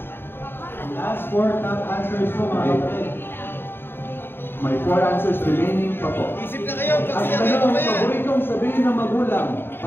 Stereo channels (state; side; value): late; right; 0.10 ms